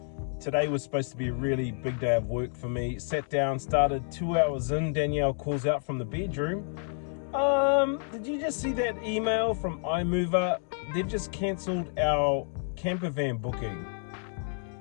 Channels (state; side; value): silent; right; 58 dB below the other